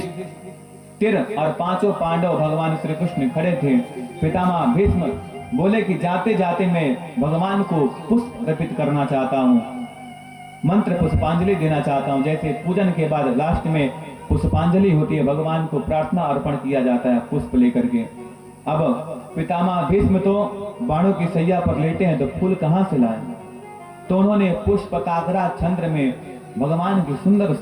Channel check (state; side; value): identical; both; correlation 1.00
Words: और पांचों पांडव भगवान श्री कृष्ण खड़े थे। पितामह भीष्म बोले कि जाते जाते मैं भगवान को पुष्प अर्पित करना चाहता हूँ, मंत्र पुष्पांजलि देना चाहता हूँ। जैसे पूजन के बाद लास्ट में पुष्पांजलि होती है, भगवान को प्रार्थना अर्पण किया जाता है पुष्प लेकर के। अब पितामह भीष्म तो बाणों की सैया पर लेटे हैं, तो फूल कहां से लाए? तो उन्होंने पुष्पकाग्रा छंद में भगवान की सुंदर